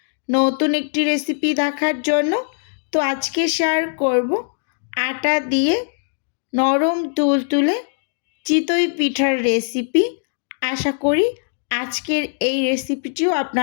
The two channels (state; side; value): silent; right; digital silence